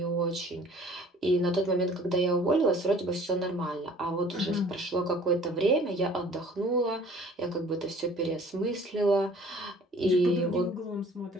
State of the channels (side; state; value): both; normal; correlation 0.51